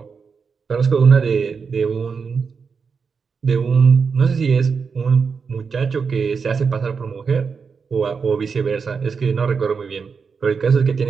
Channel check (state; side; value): quieter; left; 5.5 dB